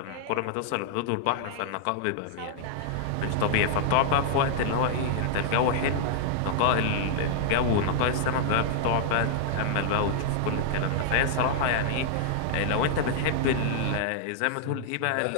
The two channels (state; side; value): different; both; correlation -0.01